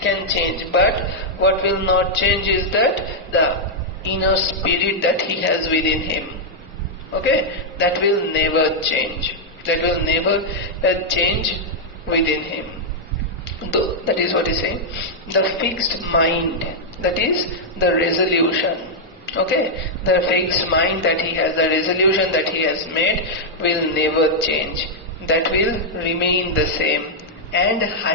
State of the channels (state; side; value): normal; both; correlation -0.04